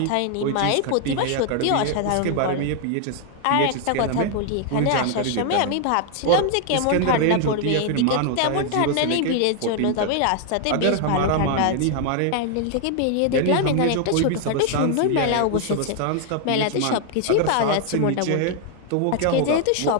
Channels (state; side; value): different; both; correlation 0.00